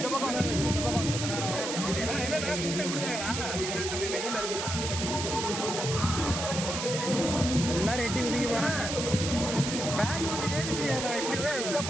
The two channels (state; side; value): noise; right; hiss, 4 dB below the sound